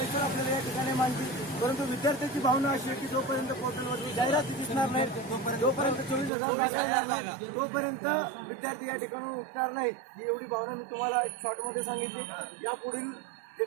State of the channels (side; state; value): left; drops out; at 6.3 s